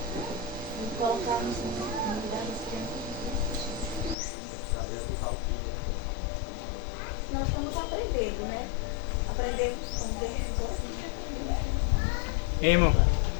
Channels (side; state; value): right; drops out; at 4.2 s